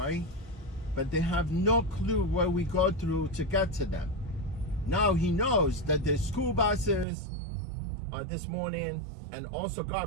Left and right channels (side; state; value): left; drops out; at 7.1 s